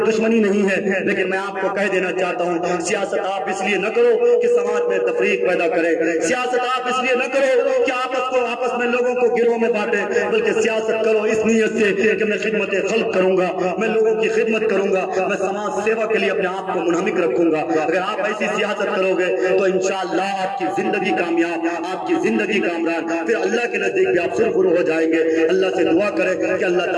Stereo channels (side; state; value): both; identical; correlation 1.00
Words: دشمنی نہیں ہے، لیکن میں آپ کو کہہ دینا چاہتا ہوں سیاست آپ اس لیے نہ کرو کہ سماج میں تفریق پیدا کرے، سیاست آپ اس لیے نہ کرو کہ آپس میں لوگوں کو گروہ میں بانٹے، بلکہ سیاست کرو اس نیت سے کہ میں خدمت خلق کروں گا، میں لوگوں کی خدمت کروں گا، میں سماج سیوا کے لیے اپنے آپ کو منہمک رکھوں گا۔ اگر آپ ایسی سیاست کرو گے تو انشاءاللہ آپ کی زندگی کامیاب، آپ کی زندگی کامران، پھر اللہ کے نزدیک بھی آپ سرخرو ہو جائیں گے۔ اللہ سے دعا کرے کہ اللہ